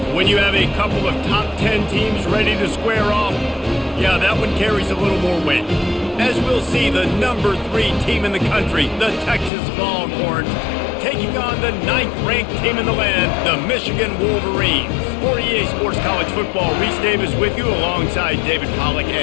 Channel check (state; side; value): drops out; right; at 9.5 s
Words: When you have a couple of top 10 teams ready to square off, yeah, that one carries a little more weight. As we'll see, the number 3 team in the country, the Texas Longhorns, taking on the 9th-ranked team in the land, the Michigan Wolverines. For EA Sports College Football, Reese Davis with you alongside David Pollack